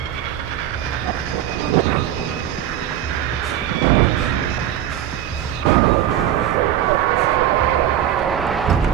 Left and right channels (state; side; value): quieter; left; 11.2 dB